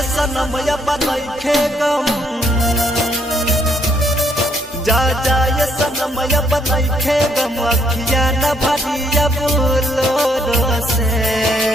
सनम बनैखे गम, जहाँ जाए सनम बनैखे गम, अखिया न भरिया बोलो से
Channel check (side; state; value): both; normal; correlation 0.70